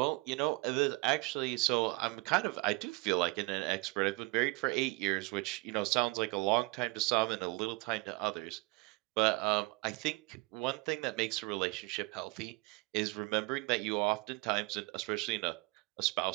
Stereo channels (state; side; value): quieter; left; 26.1 dB